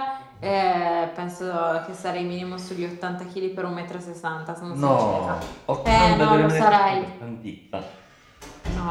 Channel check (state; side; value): identical; both; correlation 1.00